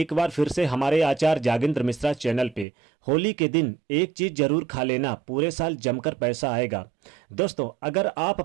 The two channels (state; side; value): drops out; left; at 2.7 s